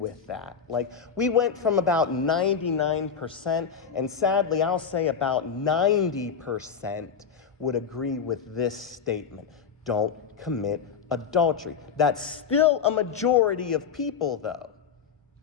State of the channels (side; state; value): right; quieter; 6.7 dB